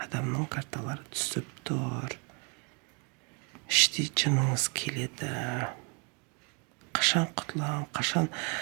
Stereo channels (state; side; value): quieter; left; 35.2 dB